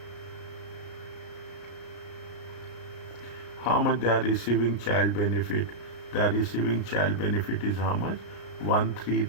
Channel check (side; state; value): right; late; 33 ms